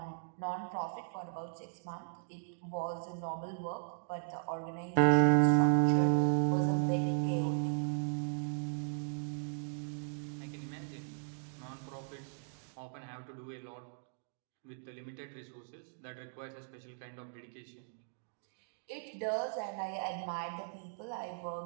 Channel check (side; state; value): left; silent; digital silence